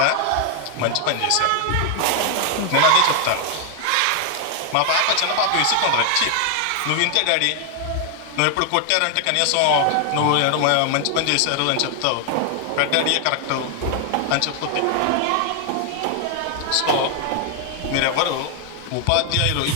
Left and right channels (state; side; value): different; both; correlation 0.00